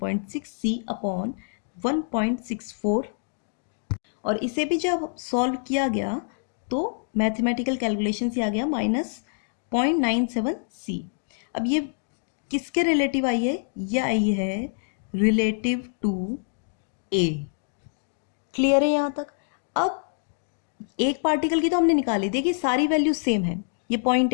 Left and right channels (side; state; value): right; silent; digital silence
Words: अपॉन 1.64, और इसे भी जब सॉल्व किया गया तो मैथमेटिकल कैलकुलेशन से आ गया -0.97c। अब ये किसके रिलेटिव आई है, ये आई है रिलेटिव टू a। क्लियर है यहाँ तक? अब एक पार्टिकल की तो हमने निकाली, देखिए सारी वैल्यू सेम है, ये